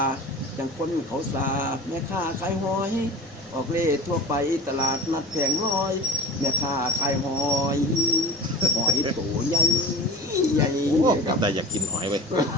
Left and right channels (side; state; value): right; noise; rumble, 29 dB below the sound